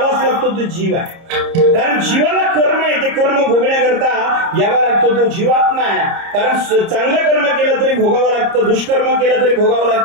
लागतो तो जीव आहे. कारण जीवाला कर्म आहे, ते कर्म भोगण्याकरता यावा लागतो तो जीवात्मा आहे. कारण चांगलं कर्म केलं तरी भोगावं लागतं, दुष्कर्म केलं तरी भोगावं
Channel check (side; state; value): left; late; 30 ms